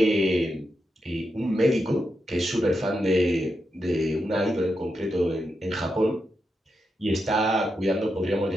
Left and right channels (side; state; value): both; normal; correlation 0.86